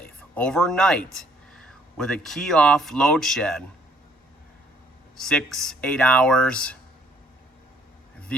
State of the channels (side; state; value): both; normal; correlation 0.64